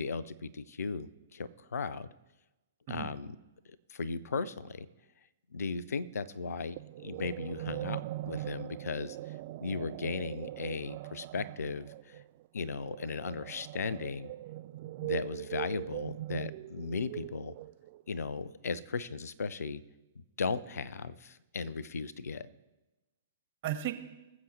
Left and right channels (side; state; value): both; inverted; correlation -0.60